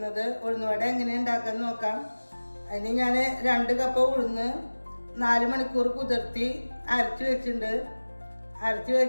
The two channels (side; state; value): both; inverted; correlation -1.00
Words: ഉഴുന്നുവട എങ്ങനെ ഉണ്ടാക്കാൻ നോക്കാം. അതിന് ഞാൻ 2 കപ്പ് ഉഴുന്ന് 4 മണിക്കൂർ കുതിർത്തി അരച്ച് വെച്ചിട്ടുണ്ട്. അരച്ച്